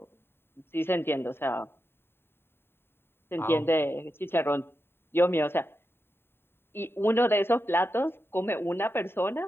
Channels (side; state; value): right; late; 0.11 ms